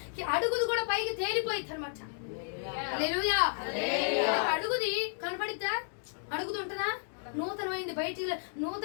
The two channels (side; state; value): right; silent; digital silence